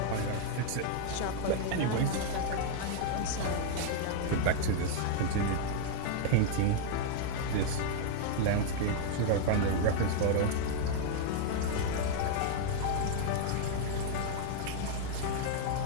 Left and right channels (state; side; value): different; both; correlation 0.00